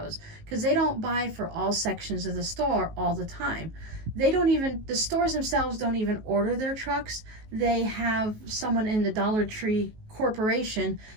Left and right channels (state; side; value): late; left; 19 ms